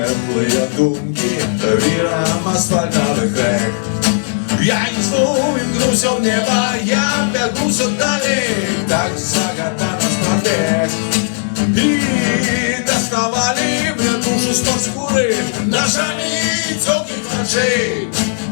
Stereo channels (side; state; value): right; silent; digital silence